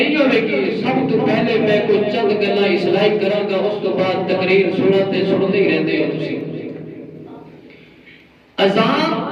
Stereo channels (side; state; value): both; identical; correlation 1.00